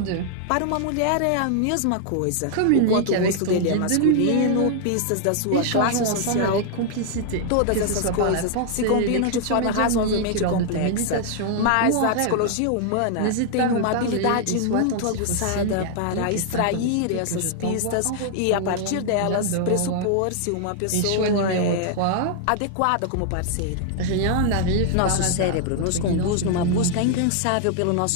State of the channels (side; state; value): both; different; correlation 0.00